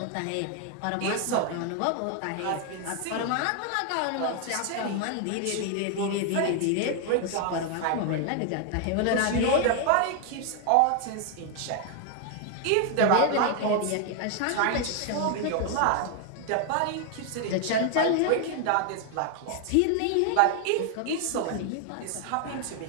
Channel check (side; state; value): both; different; correlation 0.00